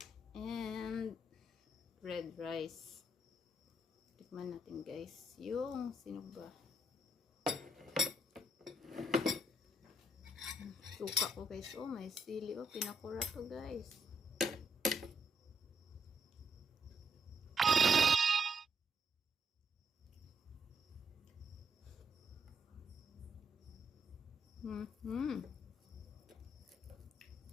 And red rice. Tikman natin guys. Yung sinuba. Suka ko guys. Oh, may sili. Oh, pinakura to guys.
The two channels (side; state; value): both; normal; correlation 0.76